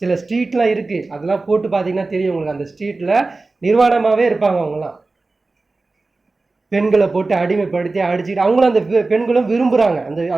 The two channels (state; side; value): quieter; left; 3.5 dB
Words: சில ஸ்ட்ரீட்லாம் இருக்குது, அதெல்லாம் போட்டு பார்த்தீங்கன்னா தெரியும் உங்களுக்கு. அந்த ஸ்ட்ரீட்டில் நிர்வாணமாகவே இருப்பாங்க. அவங்களாம் பெண்களை போட்டு அடிமைப்படுத்தி அடிச்சுக்கிட்டு அவங்களும் அந்த பெண்களும் விரும்புகிறாங்க.